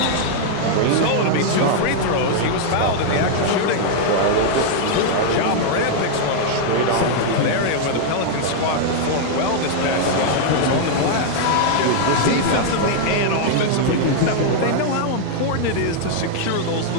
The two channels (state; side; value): different; both; correlation -0.01